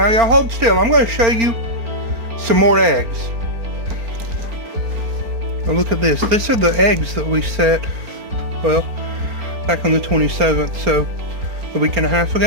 y'all hold still. I'm going to show you some more eggs. Now look at this. These are the eggs that we set, well, back on the 27th, so a week and a half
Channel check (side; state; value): left; late; 4.4 ms